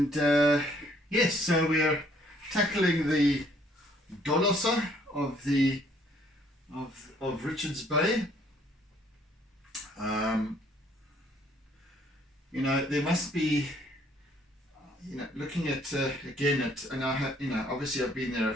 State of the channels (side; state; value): both; normal; correlation 0.63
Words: yes, so we are tackling the dolosse of Richards Bay. You know, there must be, you know, looking at again at, and I have, you know, obviously I've been there a